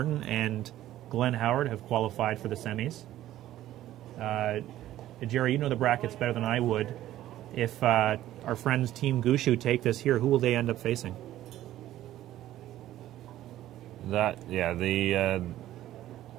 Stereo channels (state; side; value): quieter; left; 13.7 dB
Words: and Glenn Howard have qualified for the semis. Jerry, you know the brackets better than I would. If our friends Team Gushue take this here, who will they end up facing? The